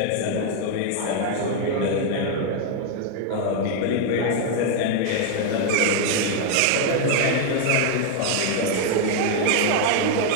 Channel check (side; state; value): both; different; correlation 0.00